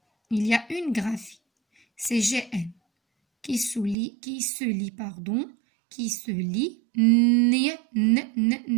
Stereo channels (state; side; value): drops out; left; at 4.0 s